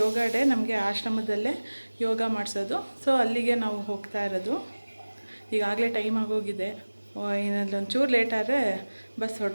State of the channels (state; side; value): inverted; both; correlation -1.00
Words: ಯೋಗ ಡೇ ನಮಗೆ ಆಶ್ರಮದಲ್ಲೇ ಯೋಗ ಮಾಡಿಸೋದು. ಸೊ ಅಲ್ಲಿಗೆ ನಾವು ಹೋಗ್ತಾ ಇರೋದು. ಈಗಾಗಲೇ ಟೈಮ್ ಆಗೋಗಿದೆ. ಇನ್ನೊಂಚೂರು ಲೇಟ್ ಆದರೆ ಬಸ್